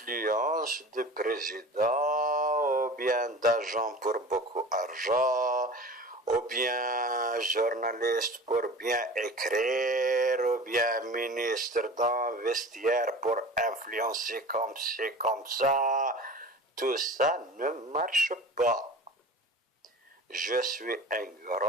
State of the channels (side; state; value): both; normal; correlation 0.38